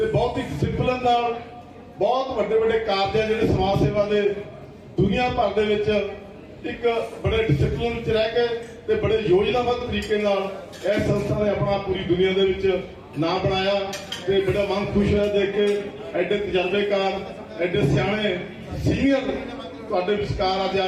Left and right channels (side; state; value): both; identical; correlation 1.00